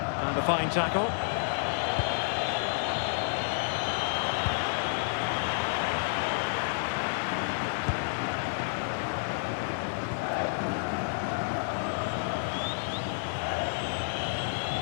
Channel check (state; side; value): silent; right; digital silence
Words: And a fine tackle.